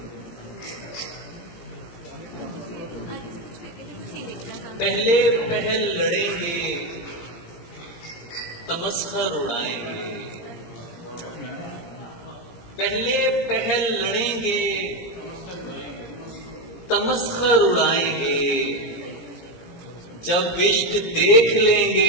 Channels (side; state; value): right; late; 17 ms